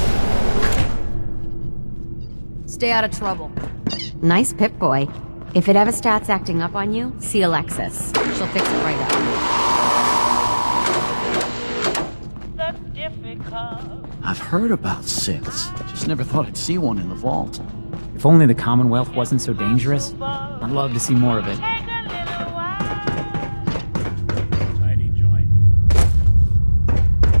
Stay out of trouble. Nice Pip-Boy. If it ever starts acting up on you, see Alexis. She'll fix it right. That's difficult. I've heard about Six. Just never thought I'd seen one in the vault. If only the Commonwealth wasn't so dangerous. Well, take a little while. Tiny joint.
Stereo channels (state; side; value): inverted; both; correlation -1.00